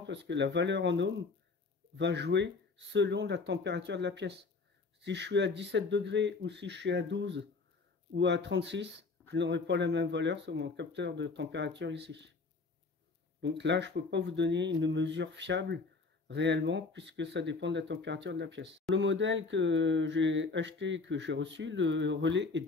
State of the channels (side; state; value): right; quieter; 4.1 dB